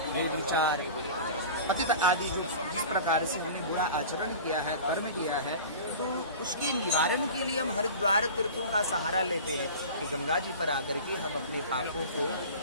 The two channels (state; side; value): inverted; both; correlation -0.36